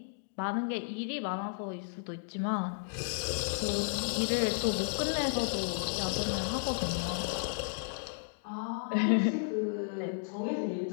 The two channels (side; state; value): right; silent; digital silence